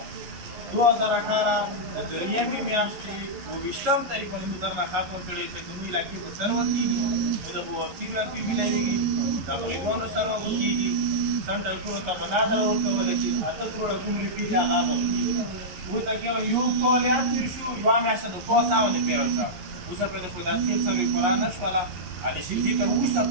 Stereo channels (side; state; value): left; late; 11 ms